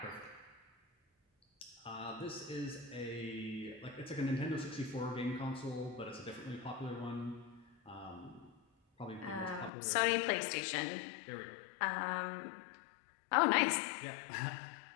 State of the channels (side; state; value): right; drops out; at 9.7 s